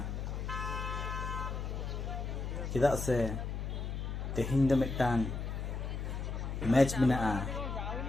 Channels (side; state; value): left; noise; hum, 4 dB below the sound